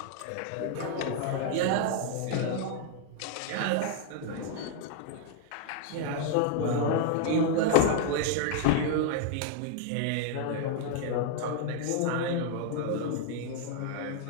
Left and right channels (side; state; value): both; different; correlation 0.00